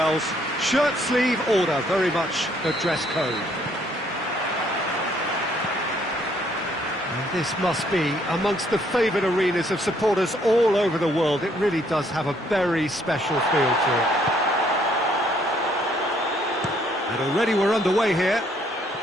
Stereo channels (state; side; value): normal; both; correlation 0.67